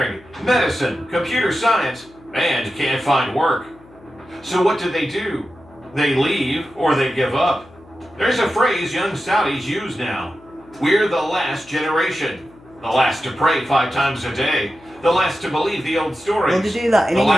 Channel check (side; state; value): left; noise; hum, 25 dB below the sound